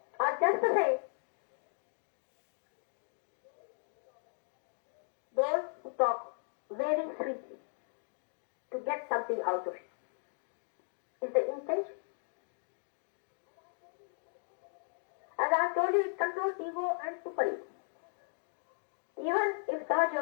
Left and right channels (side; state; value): right; silent; digital silence